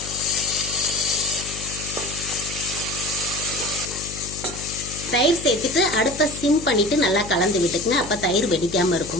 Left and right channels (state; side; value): noise; left; hum, 11 dB below the sound